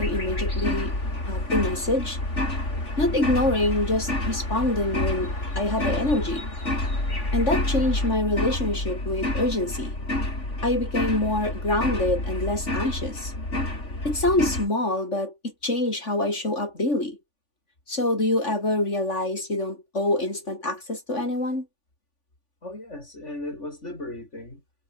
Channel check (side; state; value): right; late; 3.5 ms